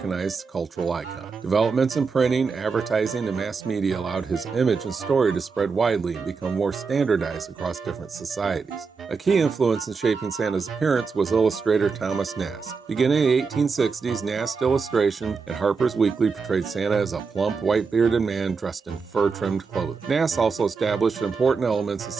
cultural icon. Developments in printing, advertising, and mass media allowed his image and story to spread widely and become more standardized across different societies. A key influence in shaping Santa's appearance was illustrator Thomas Nast. Beginning in the 1860s, Nast's illustration at Harper's Weekly portrayed Santa as a plump, white-bearded man dressed in fur-trimmed clothing. Nast also established important elements of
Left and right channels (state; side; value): quieter; left; 5.0 dB